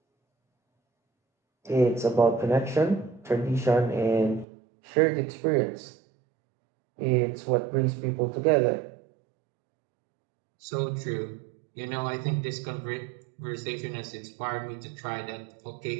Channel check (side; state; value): left; drops out; at 4.5 s